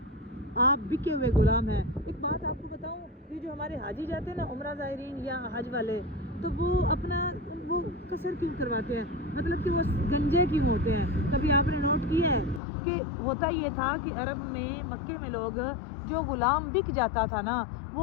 आप बिके हुए गुलाम हैं। एक बात आपको बताऊं, ये जो हमारे हाजी जाते हैं ना, उम्रा ज़ायरीन या हज वाले, तो वो अपना वो कसर क्यों करवाते हैं, मतलब कि वो गंजे क्यों होते हैं। कभी आपने नोट किया है कि होता ये था कि अरब में, मक्के में लोग जो गुलाम बिक जाता था ना,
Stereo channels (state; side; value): drops out; right; at 12.6 s